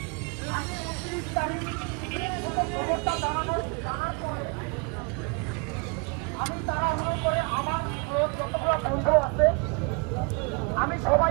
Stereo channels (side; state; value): left; quieter; 33.3 dB